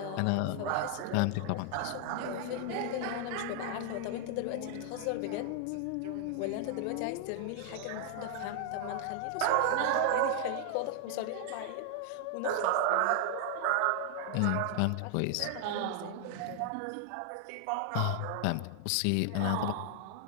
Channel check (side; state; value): both; different; correlation 0.00